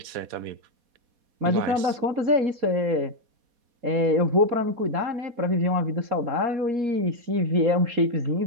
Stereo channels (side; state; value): left; late; 4.2 ms